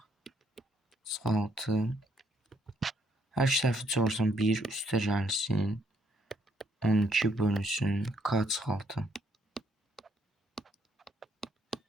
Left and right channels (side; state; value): both; normal; correlation 0.71